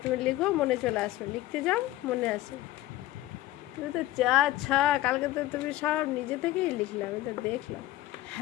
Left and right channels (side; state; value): right; quieter; 15.7 dB